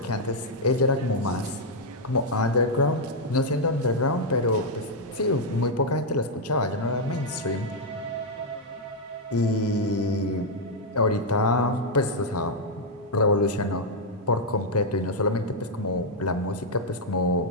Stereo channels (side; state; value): both; normal; correlation -0.02